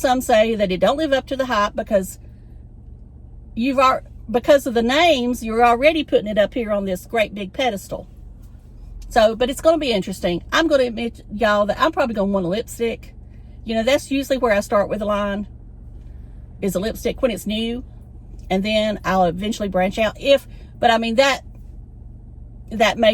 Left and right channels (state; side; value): identical; both; correlation 1.00